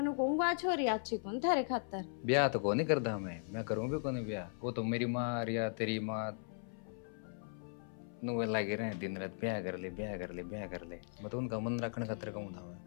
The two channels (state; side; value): silent; right; 53 dB below the other